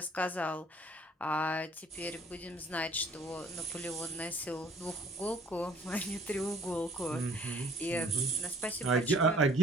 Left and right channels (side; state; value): both; normal; correlation 0.56